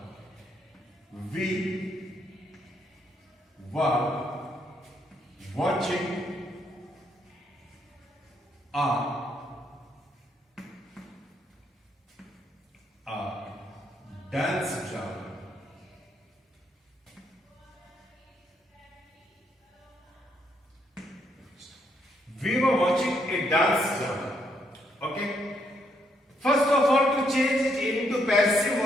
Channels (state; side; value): normal; both; correlation 0.74